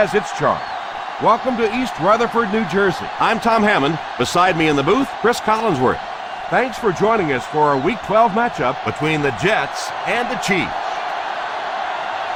its charm. Welcome to East Rutherford, New Jersey. I'm Tom Hammond. Beside me in the booth, Chris Collinsworth. Thanks for joining us for our Week 12 matchup between the Jets and the Chiefs.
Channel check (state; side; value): identical; both; correlation 1.00